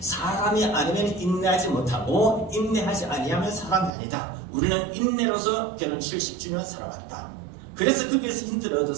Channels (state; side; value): drops out; left; at 3.9 s